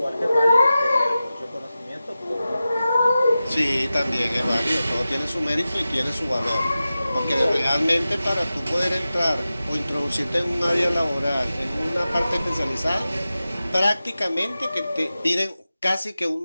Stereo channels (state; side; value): inverted; both; correlation -0.94